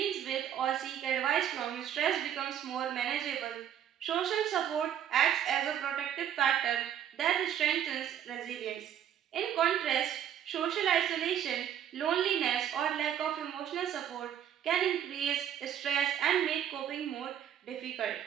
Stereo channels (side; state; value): left; quieter; 9.8 dB